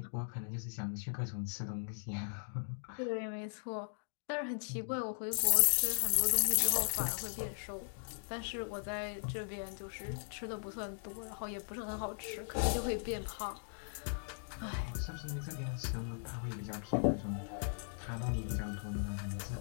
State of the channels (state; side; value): silent; right; digital silence